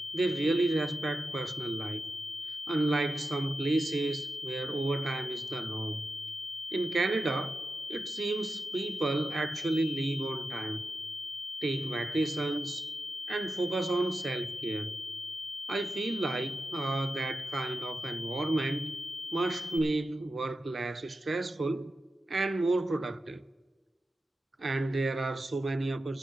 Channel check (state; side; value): normal; both; correlation 0.91